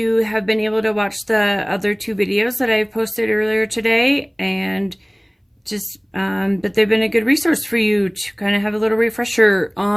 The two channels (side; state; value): both; identical; correlation 1.00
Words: have been able to watch the other two videos that I posted earlier today, and just that they've been a good resource for you to kind of have a little refresher